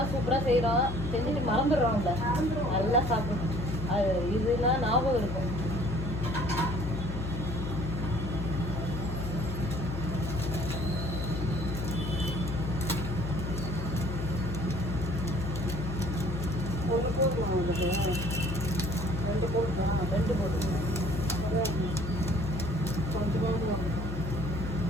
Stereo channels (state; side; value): noise; left; hum, 4 dB below the sound